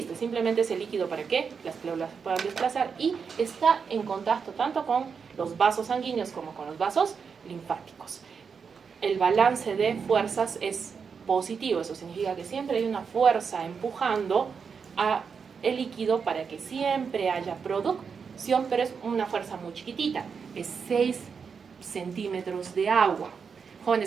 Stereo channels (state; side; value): quieter; left; 6.0 dB